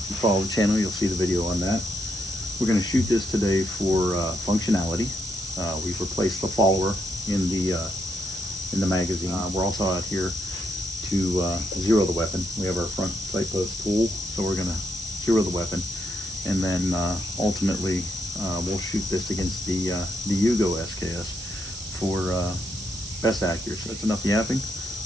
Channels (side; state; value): right; noise; hiss, 11 dB below the sound